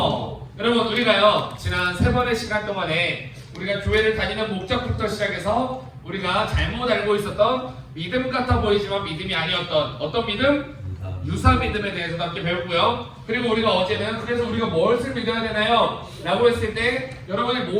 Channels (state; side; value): identical; both; correlation 1.00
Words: 여러분, 우리가요 지난 3번의 시간 동안에 우리가 교회를 다니는 목적부터 시작해서 우리가 잘못 알고 있었던 믿음 같아 보이지만 믿음이 아니었던 어떤 믿음? 유사 믿음에 대해서도 함께 배웠고요. 그리고 우리가 어제는 그래서 우리가 무엇을 믿어야 되나요? 라고 했을 때 여러분이